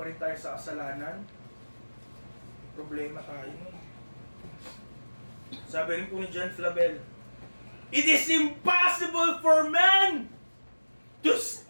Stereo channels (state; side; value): inverted; both; correlation -1.00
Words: rin tayo sa kasalanan, problema tayo. Sabi rin po ni John Flavel, it is impossible for man to